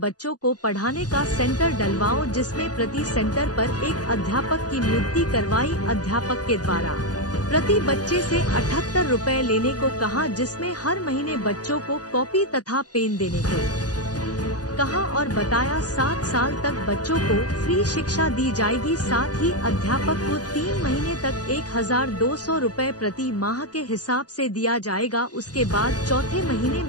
को पढ़ाने का सेंटर डलवाओ, जिसमें प्रति सेंटर पर एक अध्यापक की नियुक्ति करवाई। अध्यापक के द्वारा प्रति बच्चे से 78 रुपए लेने को कहा, जिसमें हर महीने बच्चों को कॉपी तथा पेन देने को कहा और बताया 7 साल तक बच्चों को फ्री शिक्षा दी जाएगी। साथ ही अध्यापक को 3 महीने तक 1200 रुपए प्रति माह के हिसाब से दिया जाएगा। उसके बाद चौथे महीने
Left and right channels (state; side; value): late; right; 0.68 ms